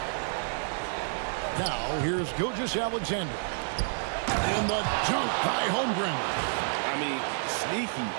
Now, here's Gilgeous-Alexander. And the dunk by Holmgren. I mean, sneaky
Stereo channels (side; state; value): left; silent; digital silence